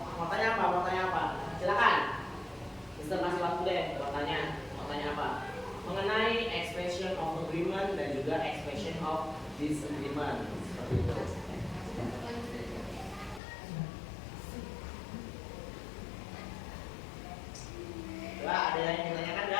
Mau tanya apa? Silakan. Mister kasih waktu deh. Mau tanya apa? Mengenai expression of agreement dan juga expression of disagreement. Seperti itu. Ada yang ingin ditanyakan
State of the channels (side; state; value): right; drops out; at 13.4 s